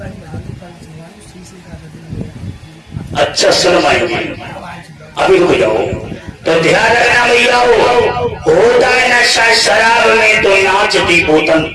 अच्छा सुन भाई, अभी रुक जाओ। तो ध्यान रखना भैया, होता है नशा शराब में तो नाचती बोतल।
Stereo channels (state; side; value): identical; both; correlation 1.00